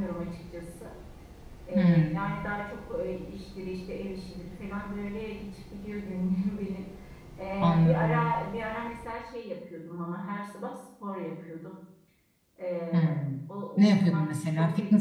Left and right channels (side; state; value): both; identical; correlation 1.00